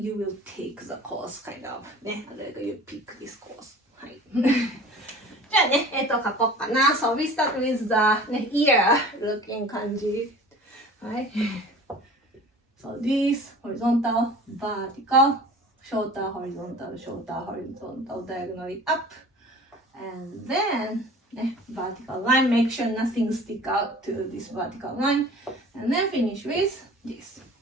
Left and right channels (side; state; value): both; normal; correlation 0.43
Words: will take the course, kind of. ね。Like you pick this course. はい。じゃあね、と書こうかな。So we start with the ear looking 漢字。はい。So this horizontal, vertical, shorter, horizontal, shorter, horizontal, diagonally up. And then vertical line, make sure nothing stick out to this vertical line. And then finish with this.